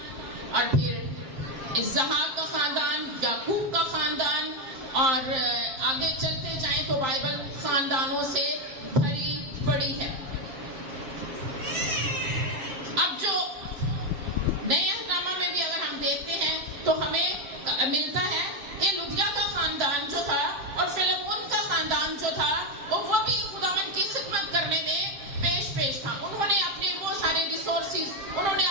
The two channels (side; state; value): left; late; 7.6 ms